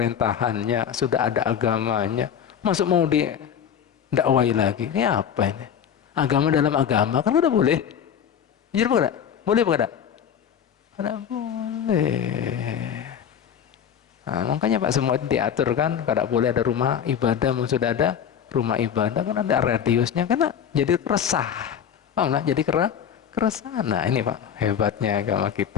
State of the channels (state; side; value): quieter; right; 8.4 dB